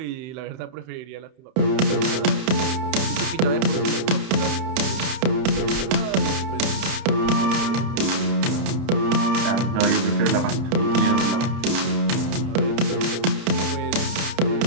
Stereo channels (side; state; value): left; late; 31 ms